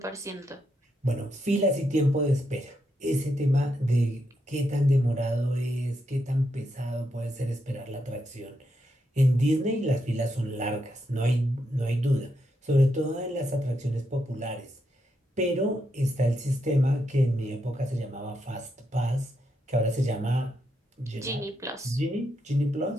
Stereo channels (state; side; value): normal; both; correlation 0.81